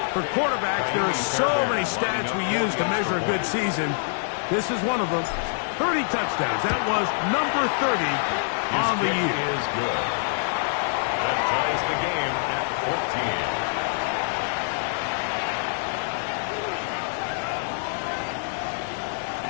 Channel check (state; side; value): silent; right; 61 dB below the other